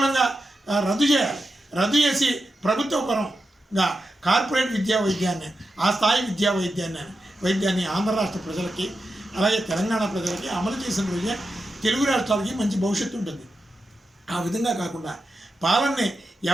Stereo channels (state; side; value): normal; both; correlation 0.89